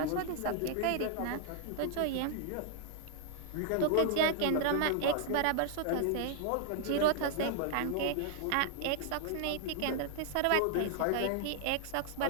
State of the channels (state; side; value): different; both; correlation 0.00